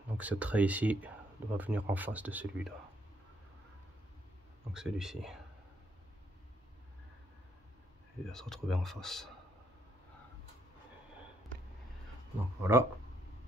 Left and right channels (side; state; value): both; normal; correlation 0.73